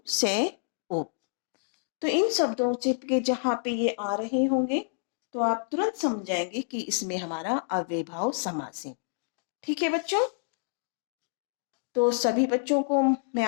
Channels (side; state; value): right; silent; digital silence